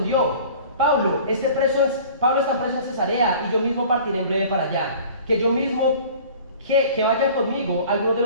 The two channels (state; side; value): inverted; both; correlation -0.45